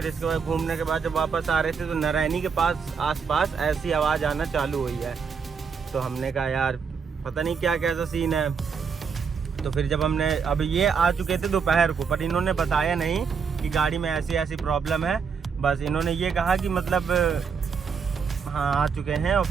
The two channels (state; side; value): quieter; left; 6.0 dB